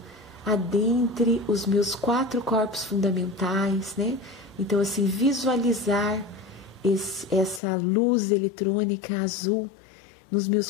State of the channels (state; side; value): drops out; right; at 7.6 s